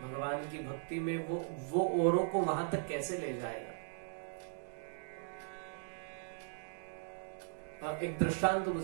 भगवान की भक्ति में, वो औरों को वहां तक कैसे ले जाएगा? एक दृष्टांत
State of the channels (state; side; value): silent; left; digital silence